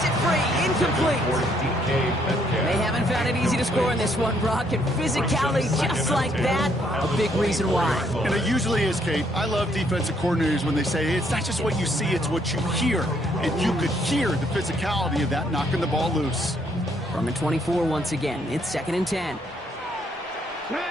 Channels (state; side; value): normal; both; correlation 0.70